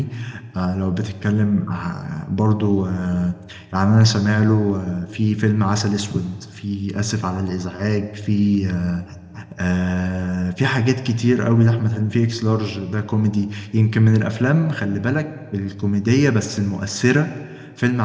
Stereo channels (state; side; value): identical; both; correlation 1.00